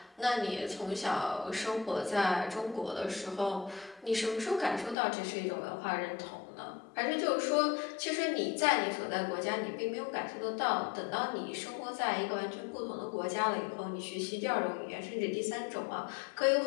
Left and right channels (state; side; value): drops out; right; at 5.0 s